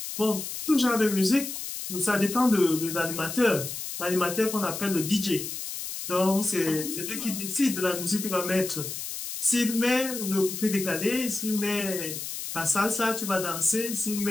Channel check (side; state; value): left; noise; hiss, 7 dB below the sound